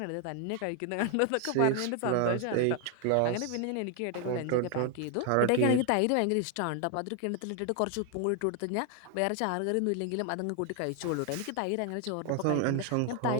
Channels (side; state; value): both; different; correlation 0.01